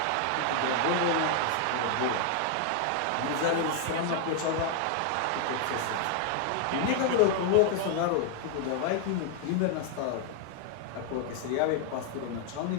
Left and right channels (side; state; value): both; different; correlation 0.00